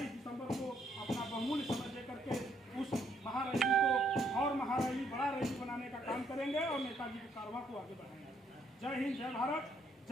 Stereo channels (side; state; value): both; normal; correlation 0.70